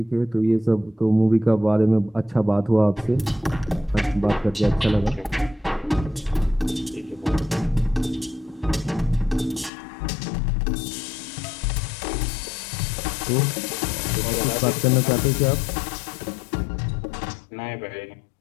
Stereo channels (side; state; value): right; drops out; at 9.7 s